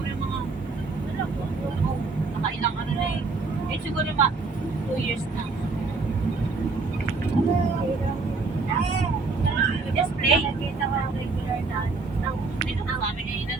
yung mga nakailang ano na eh. Eh siguro yung 2 years na. Just play. Nakita ko ang regular na dito na kami na yun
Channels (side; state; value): left; quieter; 4.0 dB